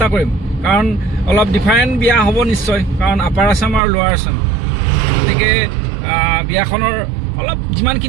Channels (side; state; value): left; drops out; at 3.8 s